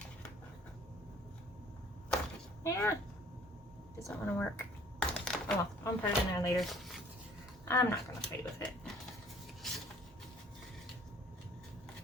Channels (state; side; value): normal; both; correlation 0.54